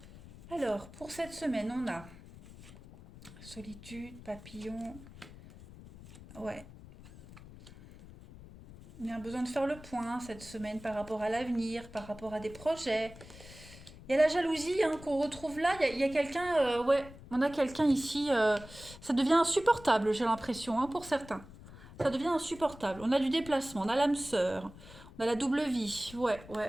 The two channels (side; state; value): left; noise; rumble, 18 dB below the sound